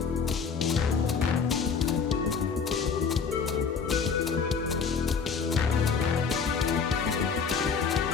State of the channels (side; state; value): right; quieter; 5.8 dB